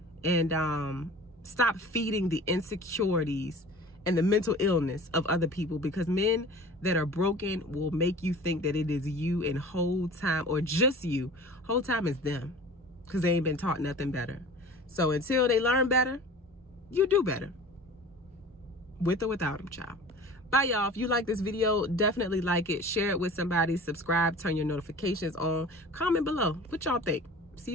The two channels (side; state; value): both; normal; correlation 0.41